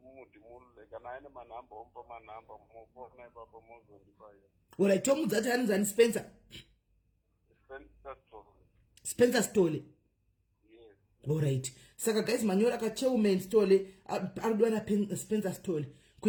kana aine manhamba omupa manhamba mufona ipapo mozondipaya. Alright, tomuudza kuti anonzi ani Spencer? Spencer Stole. Yes. Alright. Saka guys manyora ka Chairman Stole arudwa na Spencer Stole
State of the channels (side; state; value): both; identical; correlation 1.00